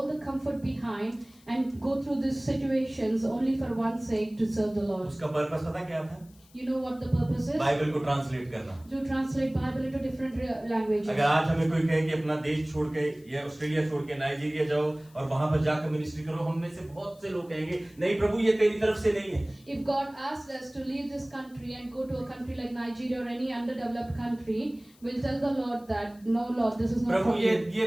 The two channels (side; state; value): left; noise; hiss, 28 dB below the sound